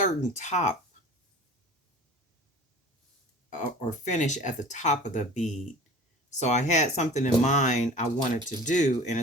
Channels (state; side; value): normal; both; correlation 0.42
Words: top or finish at the top of the bead. So I had something in mind I wanted to do, and